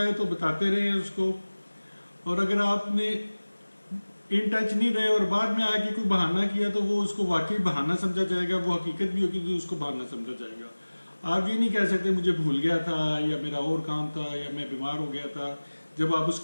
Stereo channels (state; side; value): inverted; both; correlation -1.00